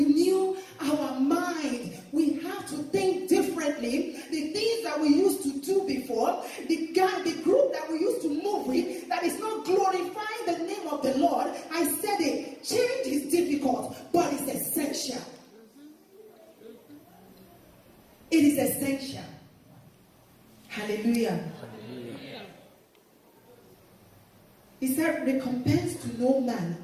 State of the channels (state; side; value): identical; both; correlation 1.00